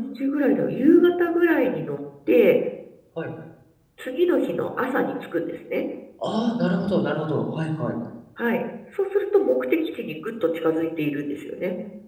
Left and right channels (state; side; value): identical; both; correlation 1.00